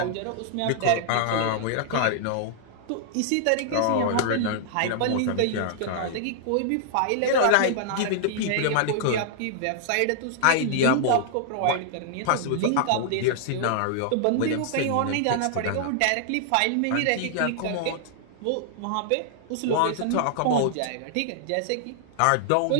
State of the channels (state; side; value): different; both; correlation -0.01